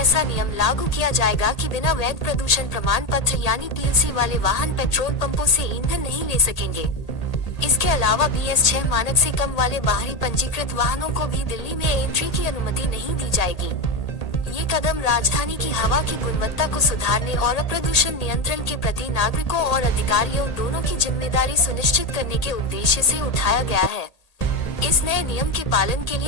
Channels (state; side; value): late; right; 1.8 ms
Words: नियम लागू किया जाएगा कि बिना वैध प्रदूषण प्रमाण पत्र यानी पीयूसी वाले वाहन पेट्रोल पंपों से ईंधन नहीं ले सकेंगे। इसके अलावा BS6 मानक से कम वाले बाहरी पंजीकृत वाहनों को भी दिल्ली में एंट्री की अनुमति नहीं दी जाएगी। ये कदम राजधानी की हवा की गुणवत्ता को सुधारने और प्रदूषण नियंत्रण के प्रति नागरिकों और अधिकारियों दोनों की जिम्मेदारी सुनिश्चित करने के उद्देश्य से उठाया गया है। इस नए नियम के पालन के